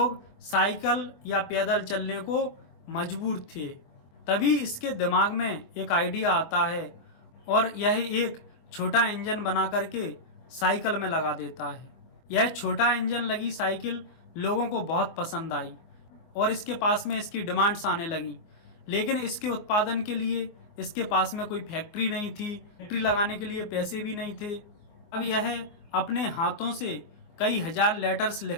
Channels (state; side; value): late; right; 24 ms